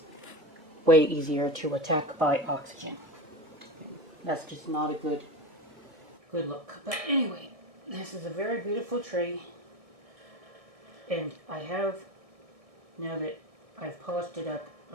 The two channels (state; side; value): late; left; 1.6 ms